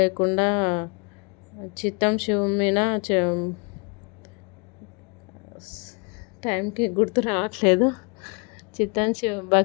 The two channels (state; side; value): quieter; right; 32.9 dB